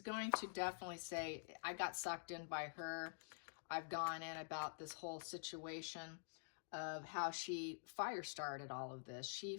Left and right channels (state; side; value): silent; right; digital silence